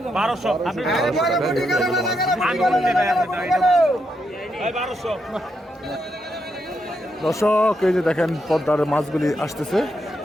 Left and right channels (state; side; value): normal; both; correlation 0.81